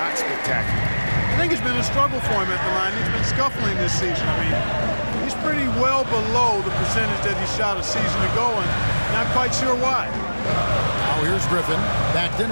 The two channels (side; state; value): both; inverted; correlation -1.00